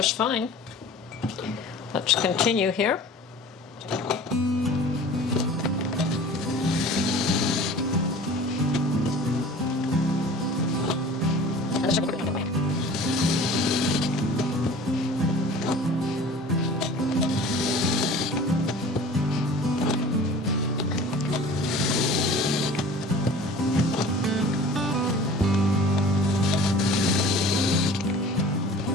fine. Let's continue here.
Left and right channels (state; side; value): normal; both; correlation 0.43